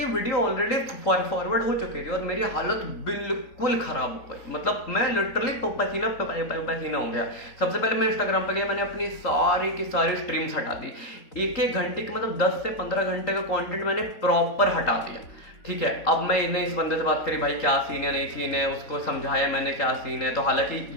वीडियो ऑलरेडी फॉरवर्ड हो चुकी थी और मेरी हालत बिल्कुल खराब हो गई। मतलब मैं लिटरली पसीना हो गया। सबसे पहले मैं इंस्टाग्राम पे गया, मैंने अपनी सारी की सारी स्ट्रीम्स हटा दी। 1-1 घंटे की मतलब 10 से 15 घंटे का कंटेंट मैंने प्रॉपर हटा दिया। ठीक है, अब मैंने इस बंदे से बात करी, भाई क्या सीन है नहीं सीन है, उसको समझाया मैंने क्या सीन है। तो हालांकि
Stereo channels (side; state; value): right; late; 3.9 ms